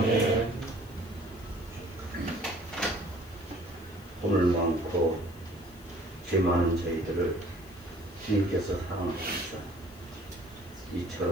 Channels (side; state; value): left; noise; hiss, 24 dB below the sound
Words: 허물 많고 죄 많은 저희들을 주님께서 사랑하셔서